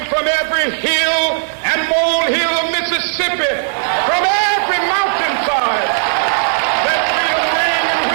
from every hill and molehill of Mississippi, from every mountainside. Let freedom ring, and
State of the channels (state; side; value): silent; left; digital silence